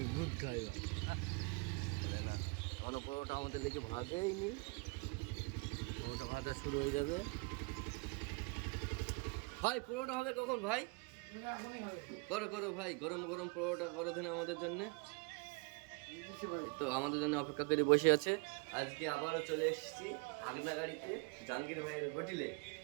গুড খাইবার বলে না কোনো পরোটা আমাদের লেগে ভাজেইনি। পরোটা ভাজা শুরু হয়ে যাবে। ভাই পরোটা হবে কখন ভাই? করো করো ভাই, গরম গরম পরোটা করো দিন আমাদের জন্যে। তো আমাদের জন্য অপেক্ষা করে বসে আছে। আজকে আবারও চলে এসেছি হাগনাগাড়িতে জাহাঙ্গীর ভাইয়ের হোটেলে।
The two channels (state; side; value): quieter; left; 30.7 dB